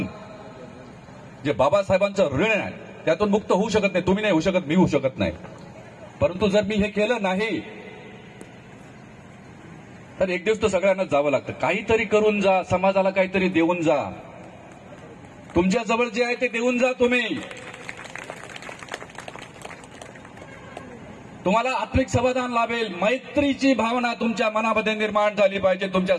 जे बाबासाहेबांचं ऋण आहे त्यातून मुक्त होऊ शकत नाही। तुम्ही नाही होऊ शकत, मी होऊ शकत नाही। परंतु जर मी हे केलं नाही तर एक दिवस तर सगळ्यांना जावं लागतं। काहीतरी करून जा, समाजाला काहीतरी देऊन जा। तुमच्या जवळ जे आहे ते देऊन जा तुम्ही। तुम्हाला आत्मिक समाधान लाभेल। मैत्रीची भावना तुमच्या मनामध्ये निर्माण झाली पाहिजे, तुमच्या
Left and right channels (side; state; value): both; identical; correlation 1.00